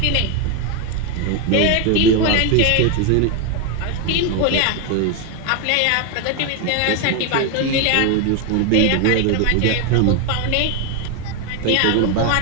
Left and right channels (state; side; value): different; both; correlation 0.01